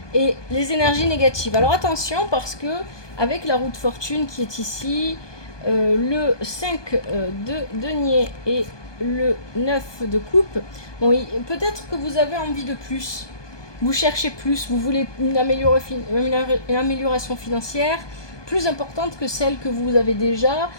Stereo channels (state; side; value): late; right; 1.2 ms